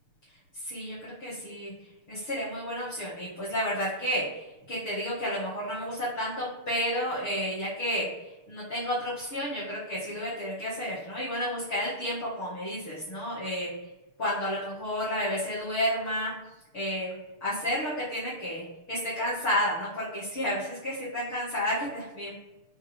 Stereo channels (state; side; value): late; right; 6.7 ms